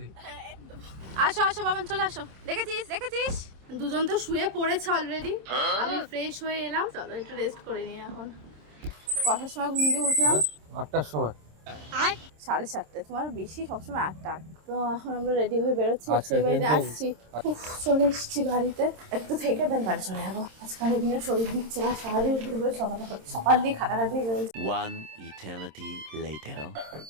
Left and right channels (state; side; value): late; left; 26 ms